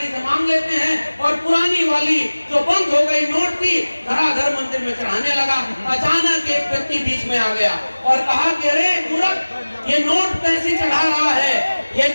से मांग लेते हैं। और पुरानी वाली जो बंद हो गई नोट थी, धड़ाधड़ मंदिर में चढ़ाने लगा। अचानक एक व्यक्ति बीच में आ गया और कहा कि अरे मूर्ख, ये नोट कैसे चढ़ा रहा है, ये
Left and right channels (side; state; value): both; inverted; correlation -1.00